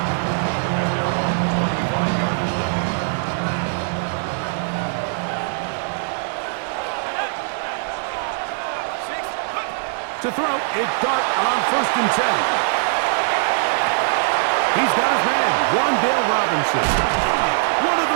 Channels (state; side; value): silent; left; digital silence